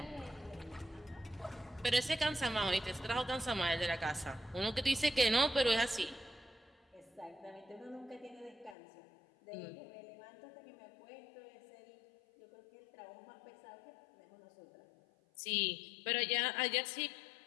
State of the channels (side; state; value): right; drops out; at 8.8 s